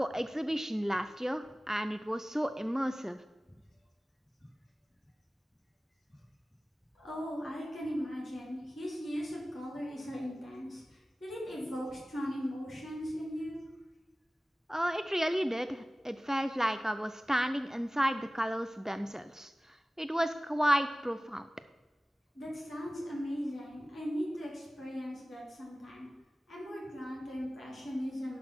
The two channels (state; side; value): normal; both; correlation 0.97